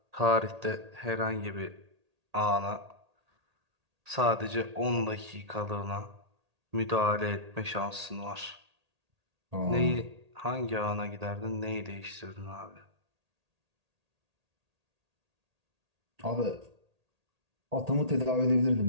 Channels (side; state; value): left; late; 1.8 ms